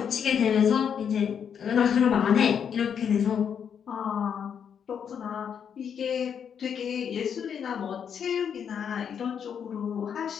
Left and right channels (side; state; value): right; quieter; 7.7 dB